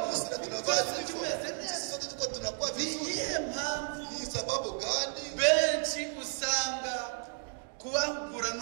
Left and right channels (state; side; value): silent; left; 56 dB below the other